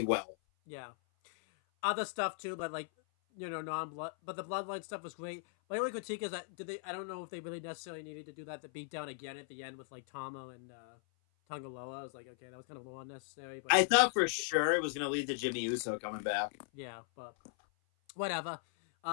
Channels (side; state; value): right; silent; 52 dB below the other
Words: well. Yeah. Other stuff too, but, like, non-blood, but the Bloodline stuff was great. My only critique is that I don't know if they really necessarily needed to do that, the beatdown again at the end with, like, Tama and Tangaloa. I was like, okay, that was kind of a little unnecessary. But I thought for sure it was going to lead to Jimmy Uso coming back. yeah, but whatever.